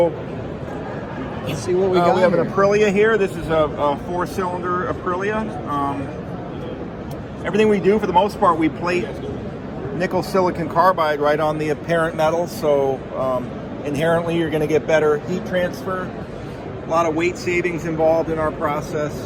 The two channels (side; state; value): both; identical; correlation 1.00